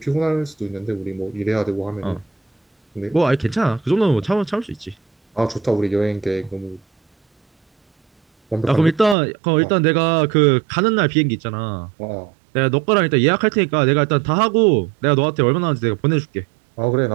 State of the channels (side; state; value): left; drops out; at 9.2 s